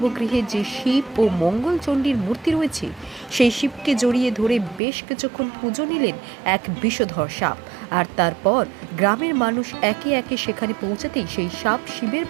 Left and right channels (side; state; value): left; drops out; at 4.8 s